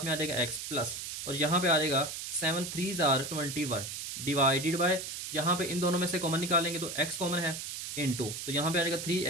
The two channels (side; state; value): right; noise; hiss, 6 dB below the sound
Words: में आ जाएगा x प्लस, और यहाँ पे आ जाएगा 7 3 ज़ार 21 डिवाइडेड बाय, यहाँ पे इन दोनों में से कॉमन निकालेंगे तो x कॉमन है इनटू, तो यहाँ पे आ जाएगा